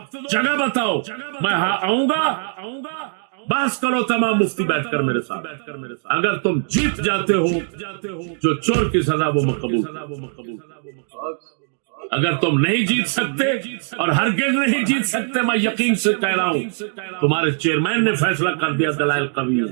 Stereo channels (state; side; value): silent; left; 63 dB below the other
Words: جگہ بتاؤ، میں آؤں گا، بحث کرو تمام مفتی بیٹھ کر میرے ساتھ۔ اگر تم جیت جاتے ہو جو چور کی سزا وہ مقبول، اگر تم نہیں جیت سکتے اور ہرگز نہیں جیت سکتے، میں یقین سے کہہ رہا ہوں تمہارے چیئرمین نے فیصلہ کر دیا، دلائل قوی